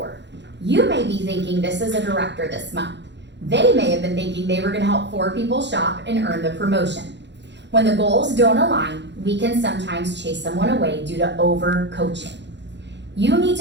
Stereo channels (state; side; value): late; left; 0.51 ms